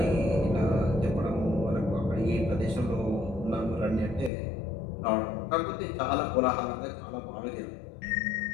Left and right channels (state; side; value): drops out; right; at 4.3 s